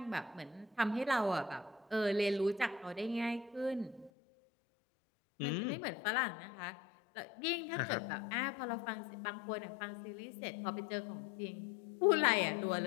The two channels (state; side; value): drops out; right; at 4.1 s